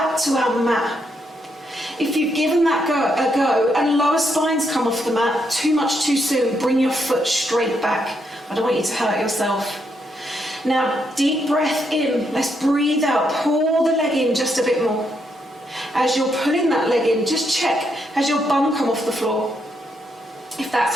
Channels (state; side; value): normal; both; correlation 0.78